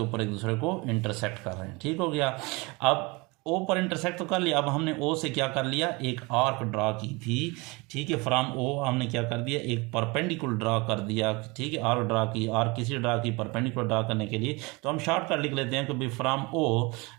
एक दूसरे को इंटरसेक्ट कर रहे हैं। ठीक हो गया। अब ओ पर इंटरसेक्ट तो कर लिया, अब हमने ओ से क्या कर लिया, एक आर्क ड्रा की थी, ठीक है। फ्रॉम ओ हमने क्या कर दिया, एक परपेंडिकुलर ड्रा कर दिया, ठीक है, आर्क ड्रा की, आर्क किसी ड्रा की परपेंडिकुलर ड्रा करने के लिए, तो हम शॉर्टकट लिख लेते हैं कि भाई फ्रॉम ओ,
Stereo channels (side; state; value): left; quieter; 26.1 dB